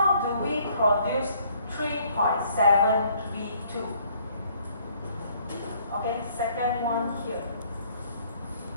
do we produce 3.7V2? Okay, second one here.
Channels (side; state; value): both; inverted; correlation -0.63